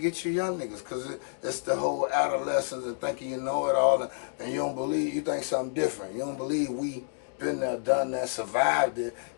you young niggas, because it's the whole adolescence and thinking you know it all, and you don't believe, you think something different. You don't believe we been there, done that, survived it,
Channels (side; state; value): right; silent; digital silence